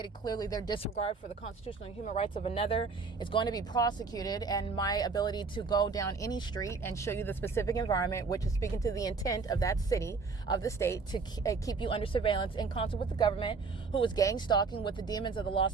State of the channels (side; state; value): left; quieter; 4.5 dB